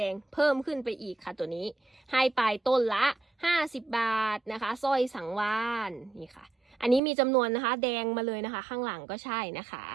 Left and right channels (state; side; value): drops out; left; at 7.0 s